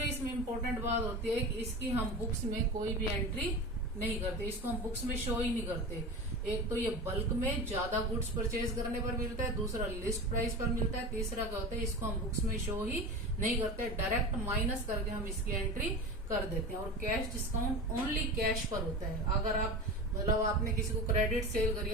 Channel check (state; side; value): normal; both; correlation 0.29